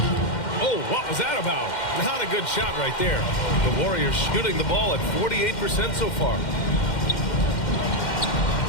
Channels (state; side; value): late; right; 2.1 ms